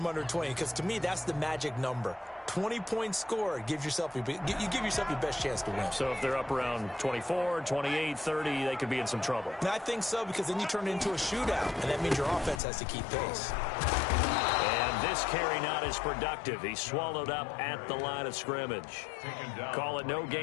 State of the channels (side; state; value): right; drops out; at 12.6 s